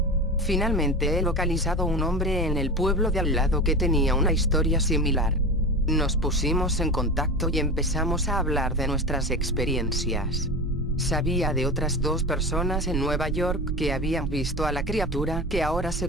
Finalmente he localizado un hombre en el pueblo de al lado que tenía una historia similar. Nos pusimos en contacto y empezamos a hablar de nuestras experiencias. Sabía de otras 2 personas en Nueva York que habían visto a la criatura que ahora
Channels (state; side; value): normal; both; correlation 0.27